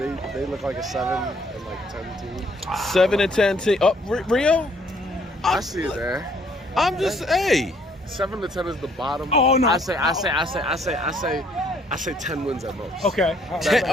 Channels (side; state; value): both; normal; correlation 0.64